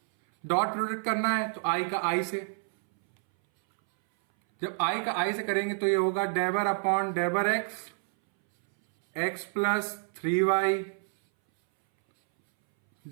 डॉट प्रोडक्ट करना है तो आई का आई से, जब आई का आई से करेंगे तो ये होगा डेबर अपॉन डेबर एक्स, एक्स प्लस 3y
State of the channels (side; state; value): left; silent; 59 dB below the other